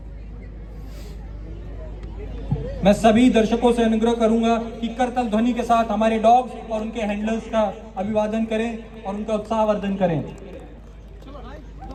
मैं सभी दर्शकों से अनुग्रह करूंगा कि करतल ध्वनि के साथ हमारे डॉग्स और उनके हैंडलर्स का अभिवादन करें और उनका उत्साहवर्धन करें।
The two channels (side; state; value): both; identical; correlation 1.00